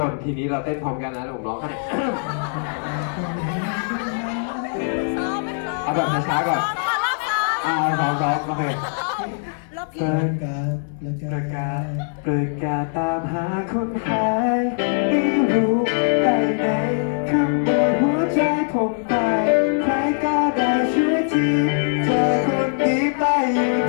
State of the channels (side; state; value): right; silent; digital silence